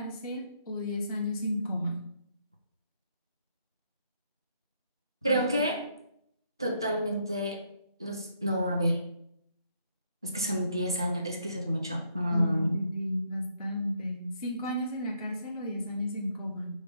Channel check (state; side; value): inverted; both; correlation -0.72